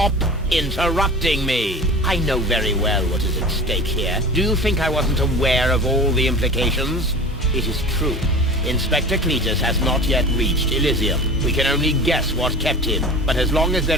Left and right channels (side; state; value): both; normal; correlation 0.36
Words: interrupting me. I know very well what is at stake here. Do you think I wasn't aware of all the implications? It is true. Inspector Cletus has not yet reached Elysium. We can only guess what kept him, but as long as